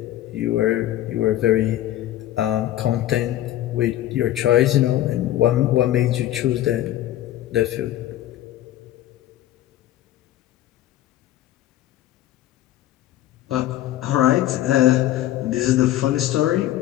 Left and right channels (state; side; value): quieter; right; 13.7 dB